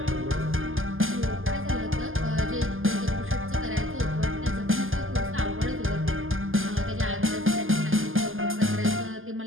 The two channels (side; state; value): left; late; 0.59 ms